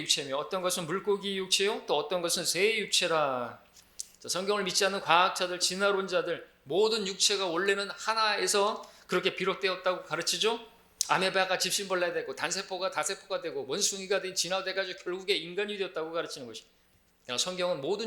어떤 것은 물고기의 육체요, 또 어떤 것은 새의 육체라. 자, 성경을 믿지 않는 과학자들, 진화론자들, 모든 육체가 원래는 하나에서 그렇게 비롯되었다고 가르치죠. 아메바가 집신벌레가 되고 단세포가 다세포가 되고 원숭이가 진화돼가지고 결국에 인간이 되었다고 가르치는 것이. 성경은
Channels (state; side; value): identical; both; correlation 1.00